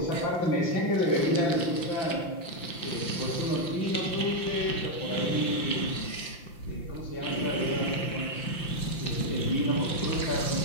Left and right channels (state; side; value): late; right; 5.8 ms